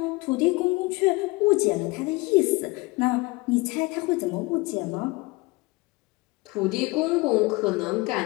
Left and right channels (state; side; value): quieter; right; 23.7 dB